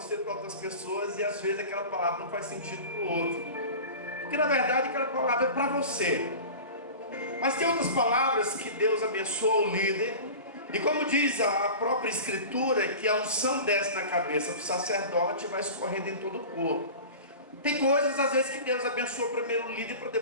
para outras pessoas, e às vezes aquela palavra não faz sentido para o outro, porque na verdade aquela palavra é para você. Mas tem outras palavras que Deus abençoa o líder, e como diz a própria Escritura, que a unção desce na cabeça do sacerdote e vai escorrendo em todo o corpo. Tem coisas às vezes que Deus abençoa primeiro o líder para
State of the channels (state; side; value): inverted; both; correlation -0.35